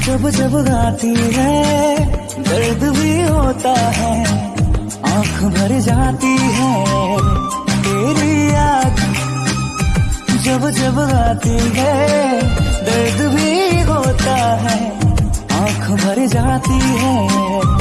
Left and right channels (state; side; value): identical; both; correlation 1.00